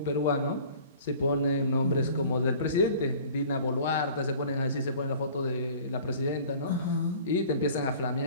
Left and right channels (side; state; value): both; inverted; correlation -0.47